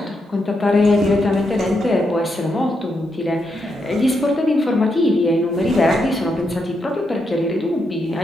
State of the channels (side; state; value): both; normal; correlation 0.82